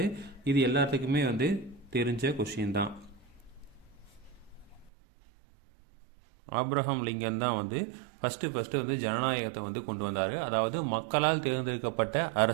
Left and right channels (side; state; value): left; drops out; at 4.9 s